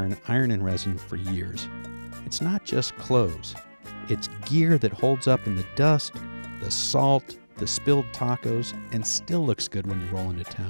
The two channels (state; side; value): inverted; both; correlation -1.00